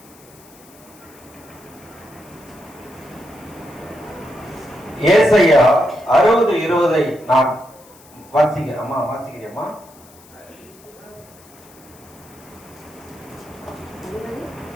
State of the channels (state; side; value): noise; left; hiss, 24 dB below the sound